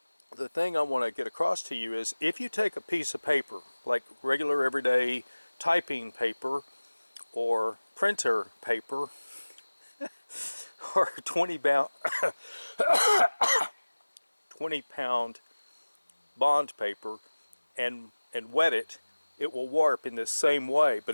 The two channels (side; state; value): both; inverted; correlation -1.00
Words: the thing I want to get across to you is, if you take a piece of paper, like regular everyday typing paper or printer paper, or 20-pound bond paper, and wet it, it will warp in this same way,